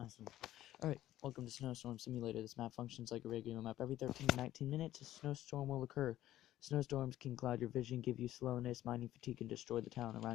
Alright, welcome to Snowstorm Simulator. This map functions like a regular map. Every 13 to 19 minutes, a snowstorm will occur. Snowstorms can cloud your vision, give you slowness, mining fatigue, and destroy the town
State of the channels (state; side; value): quieter; right; 13.8 dB